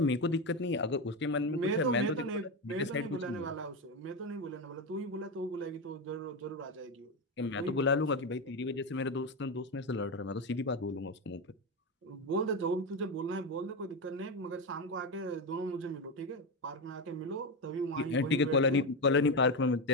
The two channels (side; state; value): both; normal; correlation 0.13